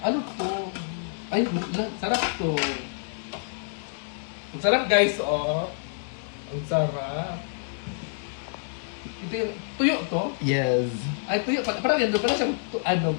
Ano to? Ay, sarap to. Ang sarap guys, oh. Ang sarap. Ito yung tuyo to? Yes. Ay, tuyo. Parang yan doon. Parang siyang,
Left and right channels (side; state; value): right; silent; digital silence